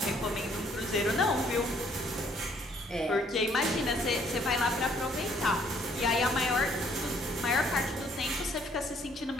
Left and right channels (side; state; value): both; normal; correlation 0.64